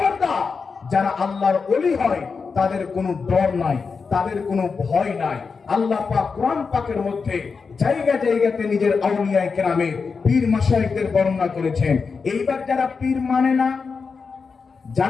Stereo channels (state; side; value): quieter; right; 5.1 dB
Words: যারা আল্লাহর ওলি হয় তাদের কোনো ডর নাই, তাদের কোনো ভয় নাই। আল্লাহ পাক কোরআন পাকের মধ্যে জায়গা জায়গাতে নিজের আউলিয়ায়ে কেরামে পীর মাশায়েখদের বর্ণনা করেছেন। এইবার যারা পীর মানে না,